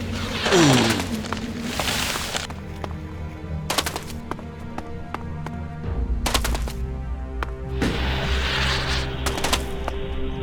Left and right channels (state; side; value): identical; both; correlation 1.00